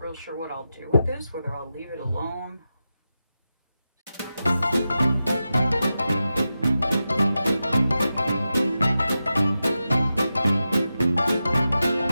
real sure what I'll do with this, whether I'll leave it alone.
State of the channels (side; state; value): both; inverted; correlation -0.91